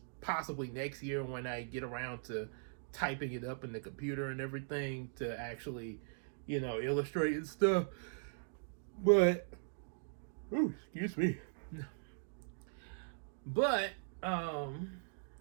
possibly next year, when I get around to typing it up in the computer and everything to actually, illustrate and stuff. But, ooh, excuse me. But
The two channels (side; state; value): left; silent; digital silence